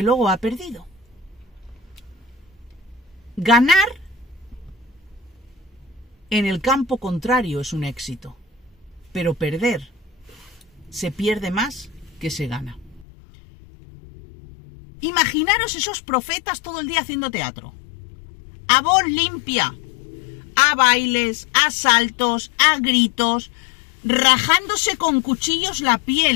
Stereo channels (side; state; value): right; drops out; at 13.1 s